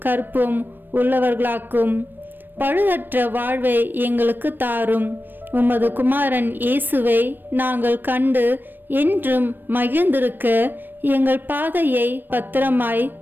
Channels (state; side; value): late; left; 0.094 ms